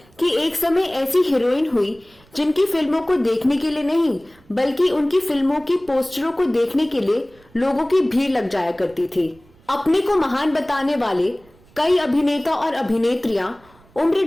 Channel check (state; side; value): noise; right; rumble, 29 dB below the sound